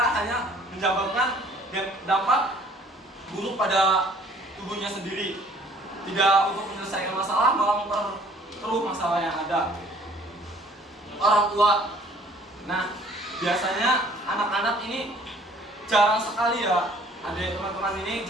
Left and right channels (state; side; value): normal; both; correlation 0.56